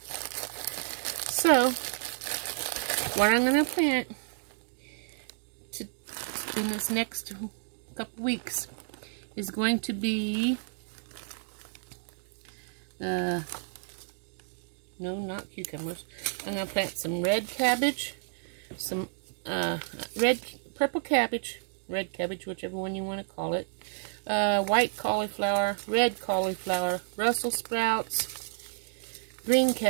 So, what I'm going to plant in this next couple weeks is going to be, no, not cucumbers. I'm going to plant some red cabbage, some purple cabbage, red cabbage, whichever one you want to call it, white cauliflower, red cauliflower, Brussels sprouts, green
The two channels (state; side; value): silent; left; digital silence